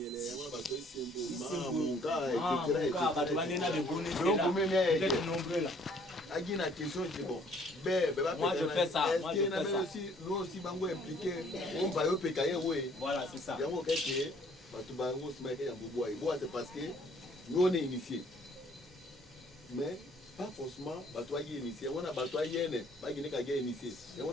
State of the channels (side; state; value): both; normal; correlation 0.60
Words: Moi je fais ça. Nous aussi, bango impliqué. On va y pécailler, oui. Voilà, c'est ça. C'est parce que nous on est initiés. Mais pas forcément batoyer initié. On a batoyer ne, pas guiné kage initié. Et on